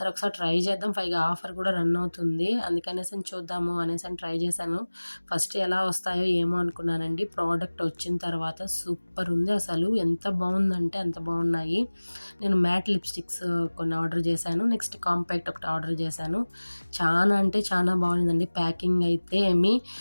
ఒకసారి ట్రై చేద్దాం, పైగా ఆఫర్ కూడా రన్ అవుతుంది, అందుకనేసి చూద్దాము అనేసి ట్రై చేశాను. ఫస్ట్ ఎలా వస్తాయో ఏమో అనుకున్నానండి, ప్రోడక్ట్ వచ్చిన తర్వాత సూపర్ ఉంది అసలు, ఎంత బాగుందంటే అంత బాగున్నాయి. నేను మ్యాట్ లిప్స్టిక్స్ కొన్ని ఆర్డర్ చేశాను, నెక్స్ట్ కాంపాక్ట్ ఒకటి ఆర్డర్ చేశాను. చాలా అంటే చాలా బాగుందండి. ప్యాకింగ్ అయితే ఏమి,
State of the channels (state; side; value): inverted; both; correlation -1.00